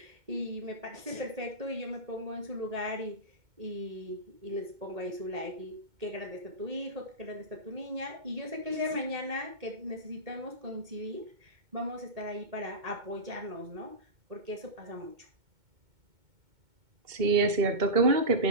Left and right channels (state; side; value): late; left; 2.2 ms